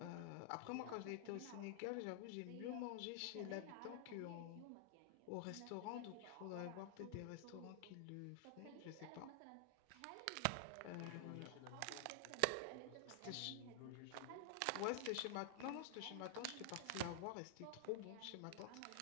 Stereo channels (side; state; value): both; different; correlation -0.01